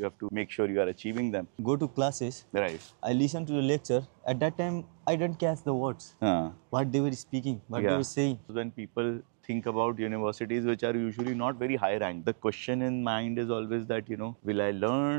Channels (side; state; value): left; silent; 57 dB below the other